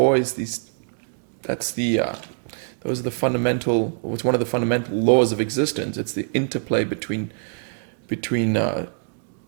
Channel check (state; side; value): silent; left; 63 dB below the other